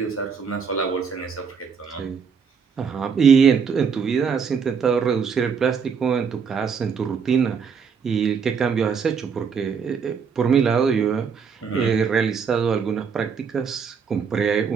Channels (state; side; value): quieter; left; 6.3 dB